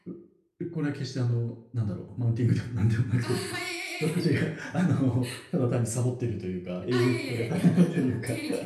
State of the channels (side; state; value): both; identical; correlation 1.00